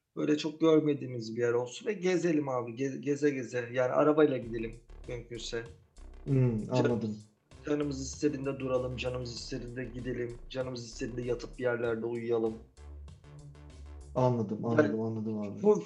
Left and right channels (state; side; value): identical; both; correlation 1.00